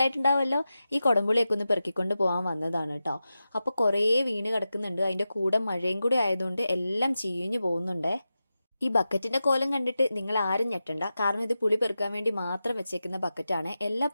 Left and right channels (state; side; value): inverted; both; correlation -0.92